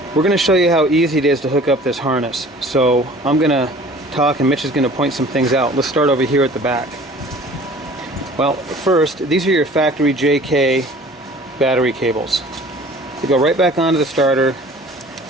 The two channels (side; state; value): both; normal; correlation 0.48